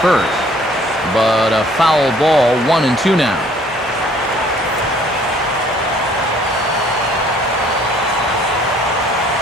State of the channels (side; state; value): both; normal; correlation 0.58